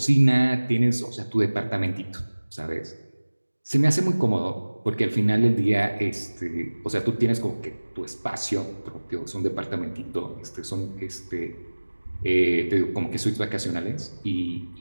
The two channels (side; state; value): both; inverted; correlation -1.00